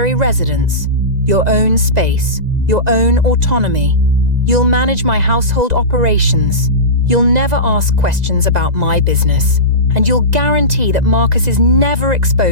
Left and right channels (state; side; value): late; left; 2.0 ms